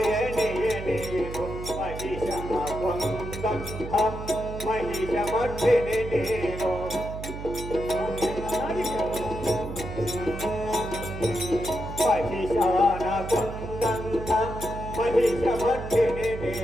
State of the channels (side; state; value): right; noise; hum, 8 dB below the sound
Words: ಮಹಿಷ ಮಧ್ಯನೇನೋ ಮಹಿಷಾನ ಕೊಂದಂತ ಮಹಿಷ